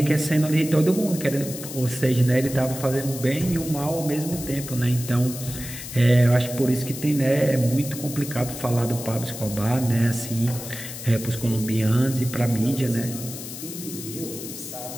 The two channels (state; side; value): noise; left; hiss, 10 dB below the sound